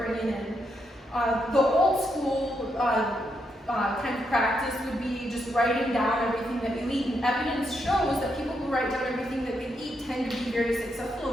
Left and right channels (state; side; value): normal; both; correlation 0.80